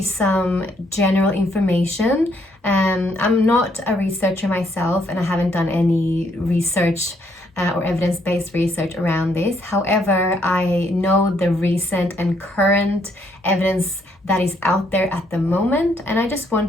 some general information. I'm not a researcher myself, and I haven't done any research or evidence-based research around this. However, I know the recent and current evidence that is out there at the moment, and I just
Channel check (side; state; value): both; normal; correlation 0.71